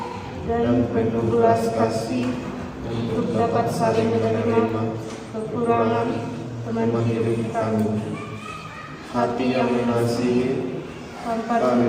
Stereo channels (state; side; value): identical; both; correlation 1.00